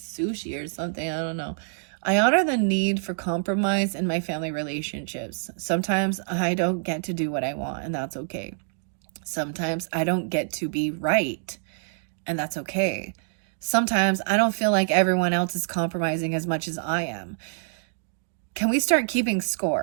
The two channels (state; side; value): silent; left; 61 dB below the other